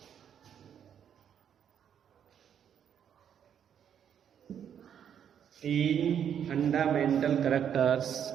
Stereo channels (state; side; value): quieter; left; 8.8 dB